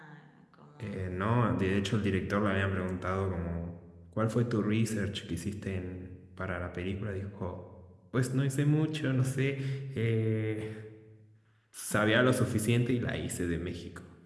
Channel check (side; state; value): both; identical; correlation 1.00